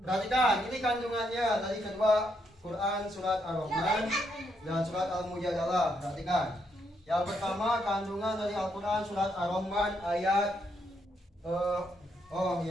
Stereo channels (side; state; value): both; normal; correlation 0.77